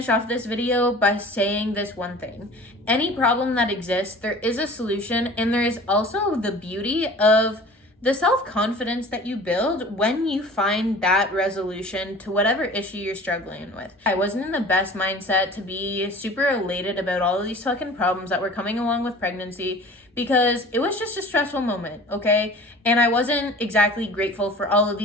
off this video by saying this one thing. Any problem that exists, there is a solution, and there is also the beauty of the self-confidence that you build when you find that resolution to whatever issue you're struggling with. I wasn't in the best mindset to be super elated about all of these fucking problems that were coming along with pregnancy, because it was just a stressful moment, okay? And I wasn't exactly grateful for all of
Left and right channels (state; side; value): normal; both; correlation 0.43